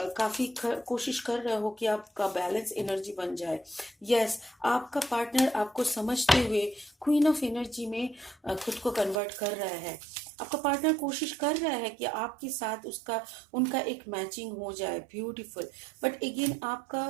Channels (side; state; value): left; drops out; at 9.2 s